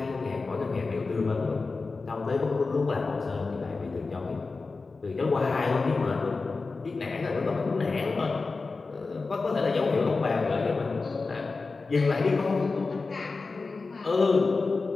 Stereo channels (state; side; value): quieter; right; 4.0 dB